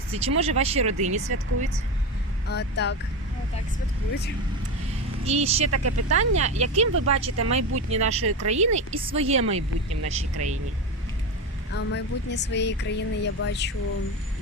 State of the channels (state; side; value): normal; both; correlation 0.19